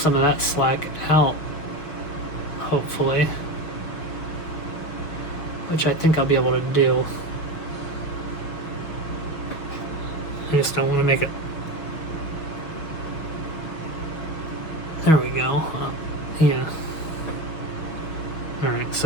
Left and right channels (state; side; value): late; right; 6.2 ms